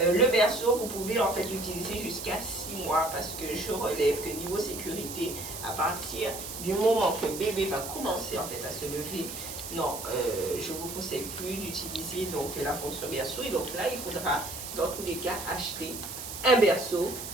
le berceau, vous pouvez en fait l'utiliser jusqu'à 6 mois parce que je relève que niveau sécurité, à partir du moment que bébé va commencer en fait à se lever, non, je ne vous conseille plus d'utiliser donc la fonction berceau. Et donc là, il faudra dans tous les cas acheter un berceau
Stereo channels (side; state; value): right; noise; hiss, 8 dB below the sound